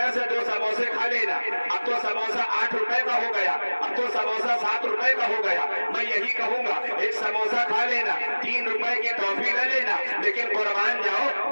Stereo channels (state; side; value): inverted; both; correlation -1.00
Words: से 2 समोसे खा लेना। अब तो समोसा 8 रुपए का हो गया, अब तो समोसा 7 रुपए का हो गया। मैं यही कहूंगा एक समोसा खा लेना, 3 रुपए की टॉफी ले लेना। लेकिन कुर्बान जाओ